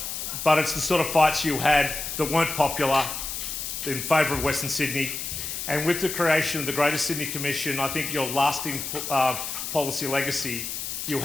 But it's the sort of fights you had that weren't popular in favour of Western Sydney. And with the creation of the Greater Sydney Commission, I think your lasting policy legacy you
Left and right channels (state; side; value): noise; left; hiss, 5 dB below the sound